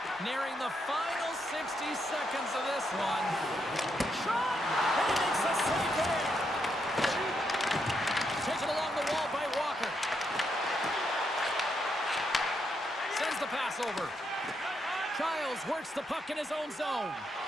Nearing the final 60 seconds of this one. Shot! And he makes the save there. Taken along the wall by Walker. Sends the pass over. Giles works the puck in his own zone.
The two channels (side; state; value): both; normal; correlation 0.79